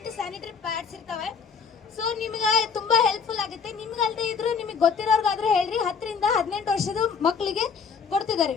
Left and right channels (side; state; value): right; quieter; 6.1 dB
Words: ಸ್ಯಾನಿಟರಿ ಪ್ಯಾಡ್ಸ್ ಇರ್ತವೆ. ಸೊ ನಿಮ್ಗೆ ತುಂಬಾ ಹೆಲ್ಪ್ಫುಲ್ ಆಗುತ್ತೆ. ನಿಮ್ಗಲ್ದೇ ಇದ್ರು ನಿಮಗೆ ಗೊತ್ತಿರೋರ್ಗಾದ್ರೂ ಹೇಳ್ರಿ. 10 ರಿಂದ 18 ವರ್ಷದ ಮಕ್ಕಳಿಗೆ ಕೊಡ್ತಿದ್ದಾರೆ.